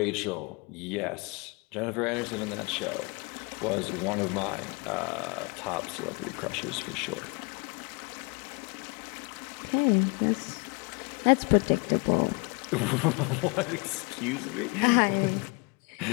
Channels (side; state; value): right; quieter; 31.2 dB